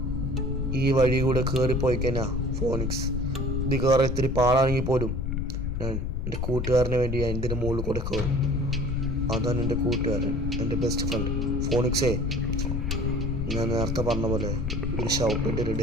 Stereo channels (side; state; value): left; noise; rumble, 2 dB below the sound